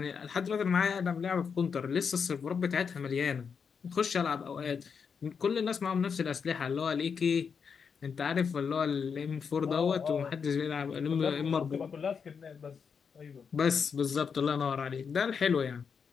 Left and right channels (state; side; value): quieter; right; 6.2 dB